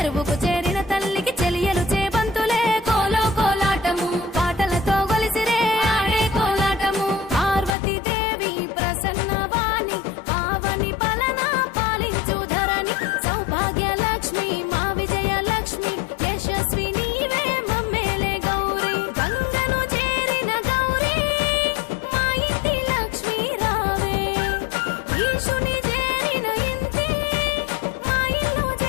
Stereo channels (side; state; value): right; drops out; at 7.8 s